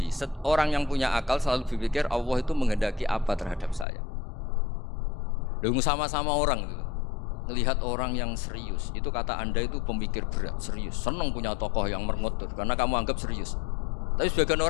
Orang yang punya akal selalu berpikir Allah itu menghendaki apa terhadap saya. Lalu sama-sama orang itu melihat orang yang serius, itu kata Anda itu pemikir berat, serius, senang punya tokoh yang merengut karena kamu anggap serius. Tapi sebagian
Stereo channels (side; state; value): right; drops out; at 3.9 s